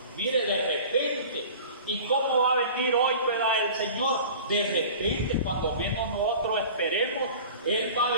mire, de repente. ¿Y cómo va a venir hoy, ¿verdad? El Señor, de repente, cuando menos nosotros esperemos, Él va a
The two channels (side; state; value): both; inverted; correlation -0.41